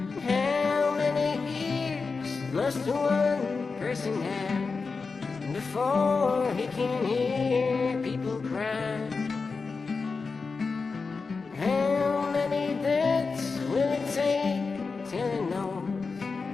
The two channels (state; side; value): quieter; right; 4.6 dB